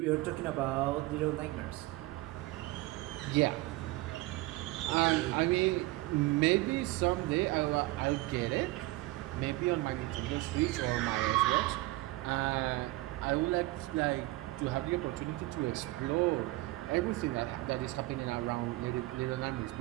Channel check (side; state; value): left; quieter; 19.8 dB